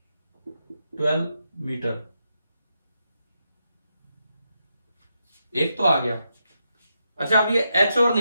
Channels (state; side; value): inverted; both; correlation -0.84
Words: 12 मीटर। एक तो आ गया। अच्छा, अब ये एच और